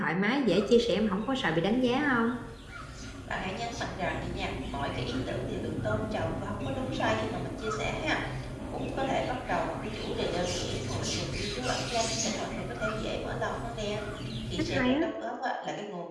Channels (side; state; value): both; identical; correlation 1.00